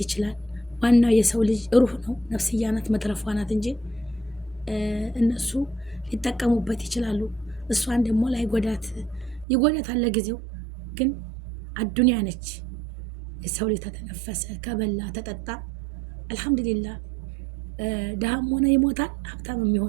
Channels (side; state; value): left; drops out; at 9.5 s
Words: ይችላል። ዋናው የሰው ልጅ ሩህ ነው፣ ነፍስያ ናት፣ መትረፏ ናት እንጂ እነሱ ሊጠቀሙበት ይችላሉ። እሷን ደግሞ ይጎዳታል ለጊዜው። ግን አዱንያ ነች። የሰው ልጅ ተተነፈሰ፣ ከበላ ተጠጣ አልሐምዱሊላህ። ድሃም ሆነ ይሞታል፣ ሀብታም